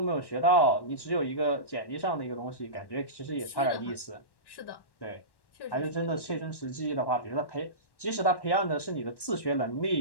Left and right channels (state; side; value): late; right; 1.1 ms